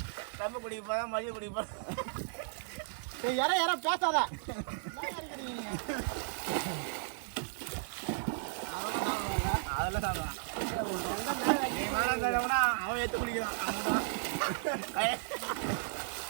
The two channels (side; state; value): left; silent; digital silence